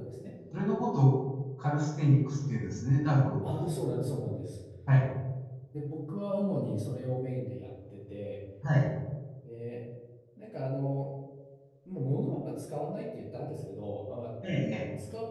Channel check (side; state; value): both; identical; correlation 1.00